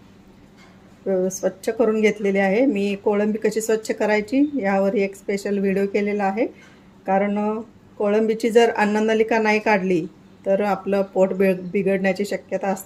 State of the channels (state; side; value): identical; both; correlation 1.00